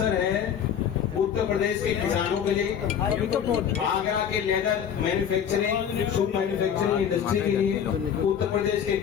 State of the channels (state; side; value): quieter; right; 8.4 dB